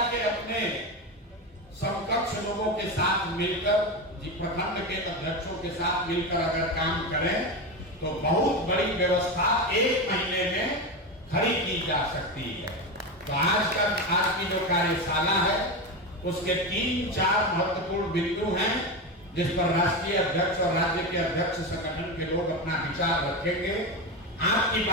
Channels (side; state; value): both; normal; correlation 0.17